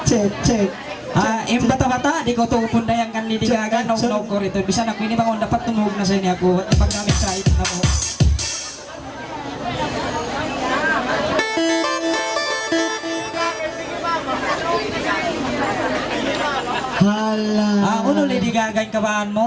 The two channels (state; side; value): identical; both; correlation 1.00